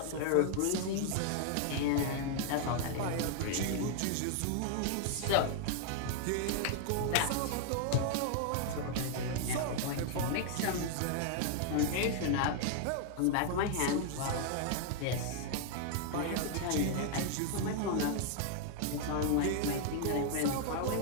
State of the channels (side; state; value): both; different; correlation 0.00